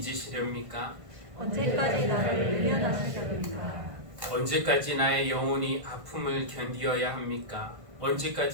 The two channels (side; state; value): left; late; 1.5 ms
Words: 언제까지 나를 외면하시렵니까? 언제까지 나의 영혼이 아픔을 견디어야 합니까?